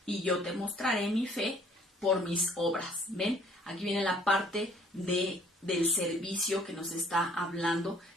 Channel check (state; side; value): normal; both; correlation 0.59